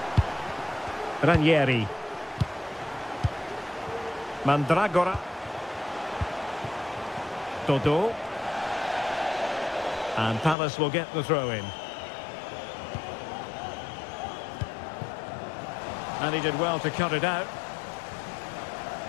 Ranieri. Mandragora. Dodo. And Palace will get the throw in. And he did well to cut it out.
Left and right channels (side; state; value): right; drops out; at 10.6 s